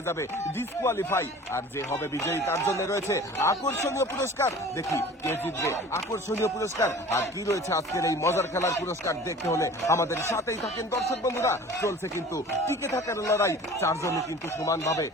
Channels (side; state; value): both; normal; correlation 0.43